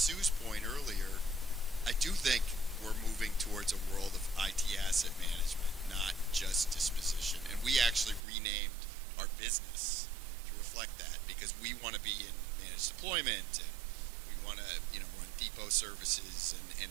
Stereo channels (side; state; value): left; drops out; at 8.2 s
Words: point earlier, I do think we're moving towards a world of IT asset management, not just disposition. And we actually renamed our business to reflect that because we want to be in managed deployment and we want to, run depot services and